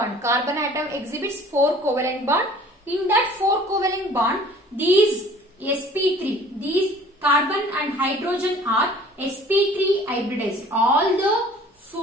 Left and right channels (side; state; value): both; normal; correlation 0.50